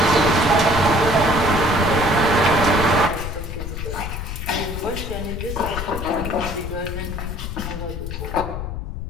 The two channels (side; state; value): left; noise; rumble, 6 dB below the sound